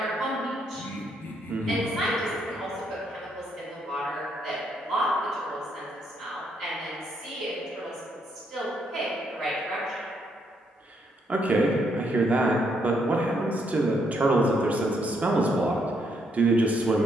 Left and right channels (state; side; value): normal; both; correlation 0.74